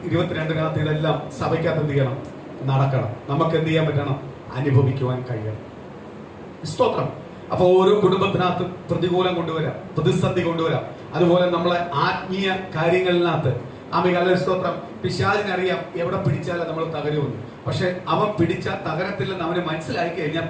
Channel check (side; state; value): both; identical; correlation 1.00